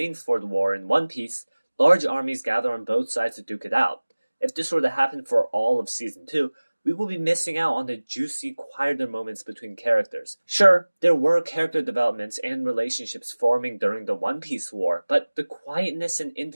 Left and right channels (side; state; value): both; inverted; correlation -1.00